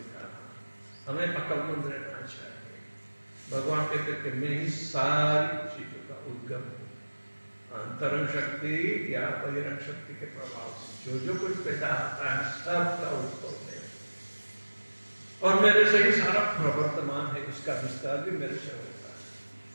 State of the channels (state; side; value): inverted; both; correlation -1.00